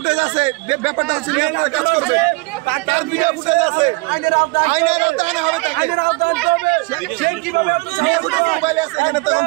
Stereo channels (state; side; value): quieter; left; 25.4 dB